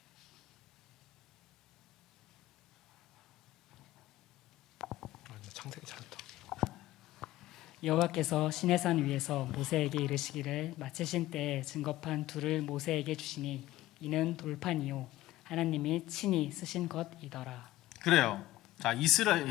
창세기 잘했다. 여호와께서 시내산 위에서 모세에게 이르시기를 마치신 때에 증거판 둘을 모세에게 주시니 이는 돌판이요 하나님이 친히 쓰신 것이더라. 그래요. 자,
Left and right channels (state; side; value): quieter; right; 16.1 dB